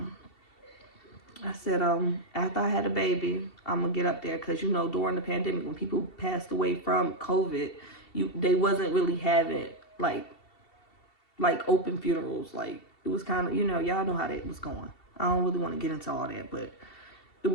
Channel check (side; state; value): right; late; 2.7 ms